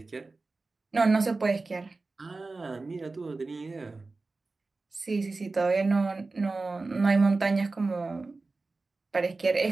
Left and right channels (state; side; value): quieter; left; 3.6 dB